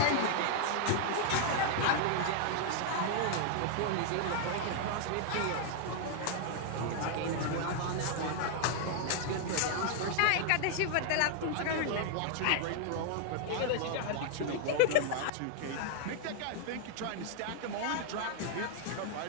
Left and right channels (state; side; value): different; both; correlation 0.00